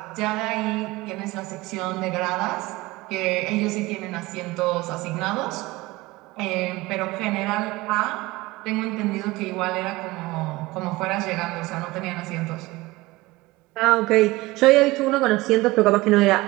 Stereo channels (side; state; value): left; quieter; 20.2 dB